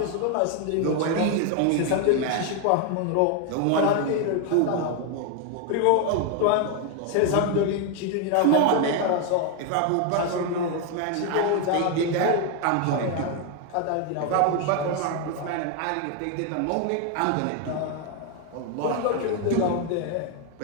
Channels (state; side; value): different; both; correlation 0.01